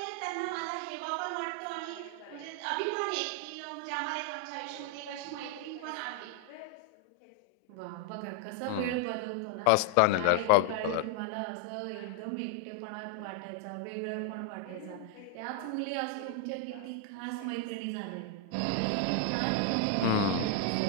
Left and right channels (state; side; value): different; both; correlation 0.00